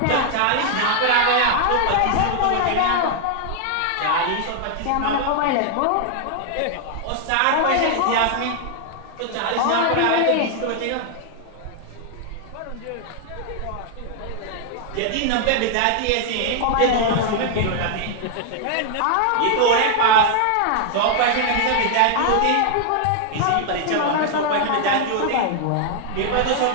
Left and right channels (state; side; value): different; both; correlation 0.00